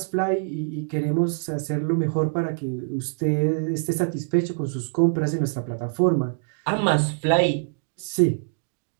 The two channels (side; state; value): left; silent; digital silence